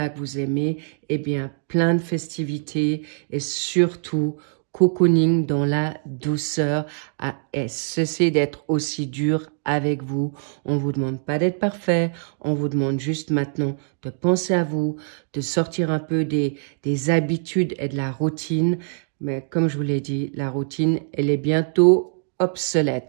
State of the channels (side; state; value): left; silent; digital silence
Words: que vous aimez, eh bien, plein de festivités et surtout, cocooning dans la douceur. Et cessez d'être aussi dur avec vous. On ne vous demande pas d'être parfait. On vous demande juste maintenant de penser à vous, de sortir un peu des habitudes et de la routine. Mais comme je vous l'ai dit, la routine, elle est bientôt obsolète.